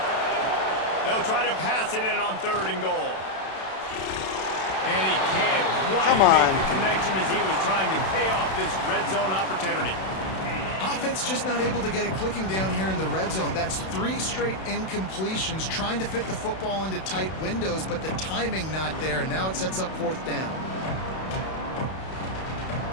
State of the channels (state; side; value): late; right; 32 ms